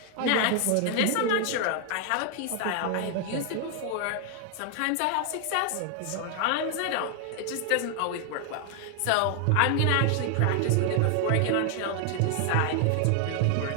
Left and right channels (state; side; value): different; both; correlation 0.00